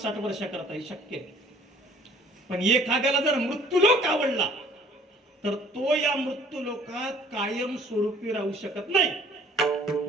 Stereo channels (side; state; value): both; normal; correlation 0.55